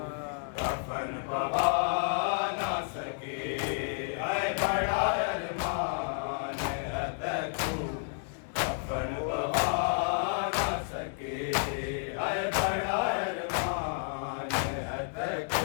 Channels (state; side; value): silent; right; 57 dB below the other